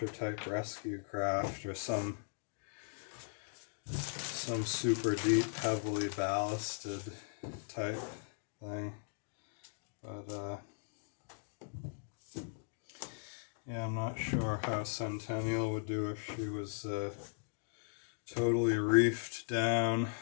type rescue craft, or some super deep, heavily ballasted type thing. But yeah, I'm not sure how Centennial would do if she was totally reefed down.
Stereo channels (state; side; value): silent; right; digital silence